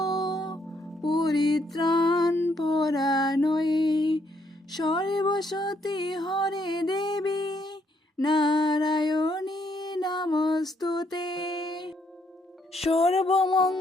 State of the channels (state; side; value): normal; both; correlation 0.72